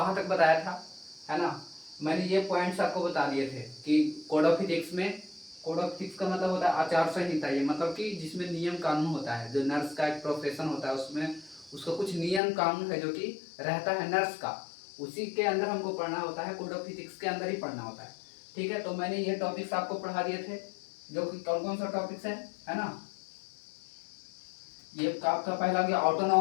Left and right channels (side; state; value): right; drops out; at 12.4 s